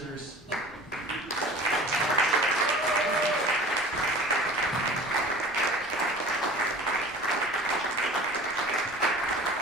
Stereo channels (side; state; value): both; normal; correlation 0.41